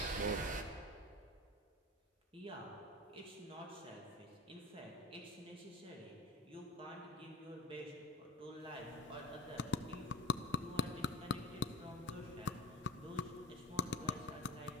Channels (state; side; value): normal; both; correlation 0.34